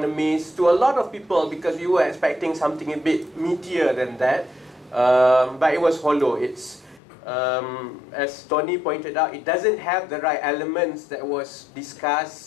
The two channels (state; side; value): drops out; right; at 7.0 s